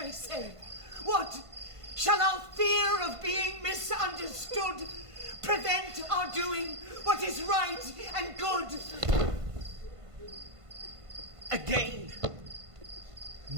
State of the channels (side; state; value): left; late; 1.5 ms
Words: say. What? Shall our fear of being misunderstood prevent our doing what is right and good? Again,